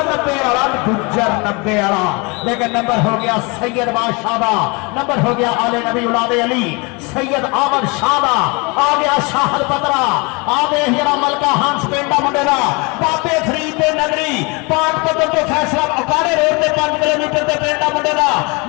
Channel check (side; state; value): right; quieter; 28.9 dB